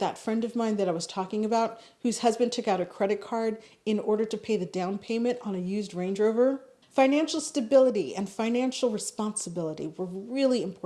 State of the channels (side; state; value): both; identical; correlation 1.00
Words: friend of mine that I was talking about, whose husband took out a credit card in order to pay the down payment on a used Range Rover. Financial stability and financial responsibility were really